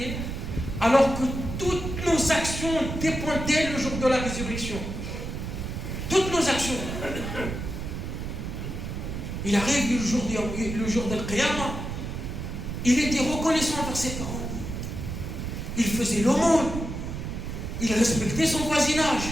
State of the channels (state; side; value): noise; right; rumble, 5 dB below the sound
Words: alors que toutes nos actions dépendaient le jour de la résurrection? Toutes nos actions. Il arrive le jour de l'Qiyamah, il était reconnaissant envers ses parents. Il faisait l'aumône. Il respectait son voisinage.